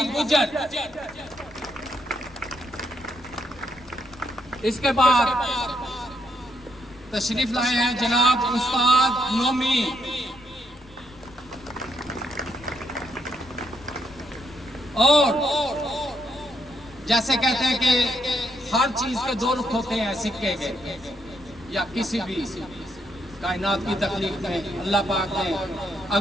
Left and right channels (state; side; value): noise; left; rumble, 24 dB below the sound